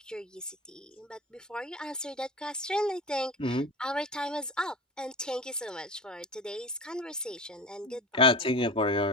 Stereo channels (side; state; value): both; normal; correlation 0.31